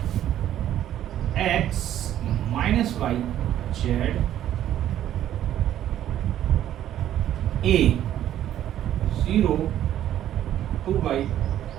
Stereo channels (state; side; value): quieter; left; 11.6 dB